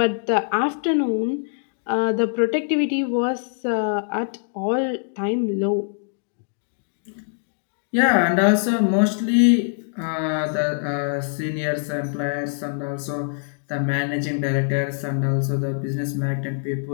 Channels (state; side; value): silent; right; digital silence